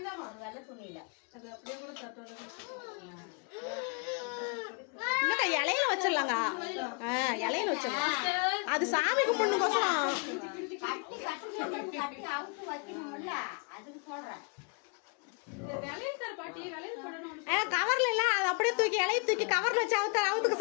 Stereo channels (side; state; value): right; quieter; 35.4 dB